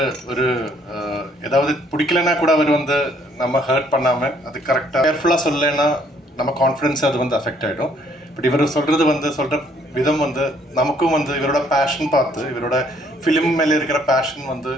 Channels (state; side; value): normal; both; correlation 0.64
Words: ஒரு ஏதாவது பிடிக்கலன்னா கூட அவர் வந்து நம்ம ஹர்ட் பண்ணாமல் அது கரெக்டாக கேர்ஃபுல்லாக சொல்லலைன்னா நம்ம கான்ஃபிடன்ஸ் அது வந்து அஃபெக்ட் ஆகிடும். பட் இவர் சொல்கிற விதம் வந்து நமக்கும் வந்து இவரோட பேஷன் பார்த்து, இவரோட ஃபிலிம் மேலே இருக்கிற பேஷன் வந்து